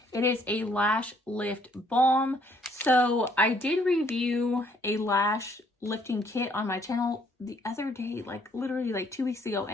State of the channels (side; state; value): both; normal; correlation 0.65